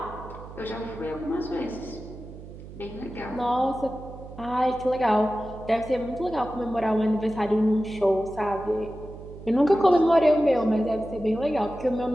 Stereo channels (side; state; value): right; noise; hum, 15 dB below the sound